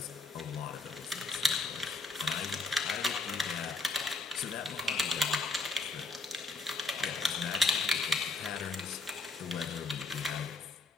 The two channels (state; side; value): quieter; right; 3.5 dB